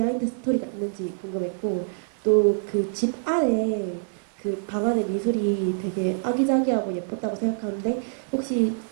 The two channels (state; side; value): silent; left; digital silence